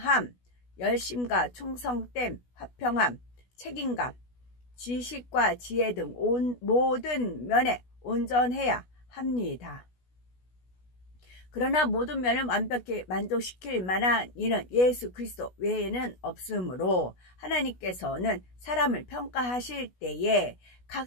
열심과 충성됨, 화평함, 책임감, 지식과 지혜 등 모든 면에 온전해야 합니다. 그러나 모든 면을 완벽히 만족시킬 만한 이는 예수 그리스도 외에는 없으므로 하나님께서는 사람을 평가하실 때에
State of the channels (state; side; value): late; right; 16 ms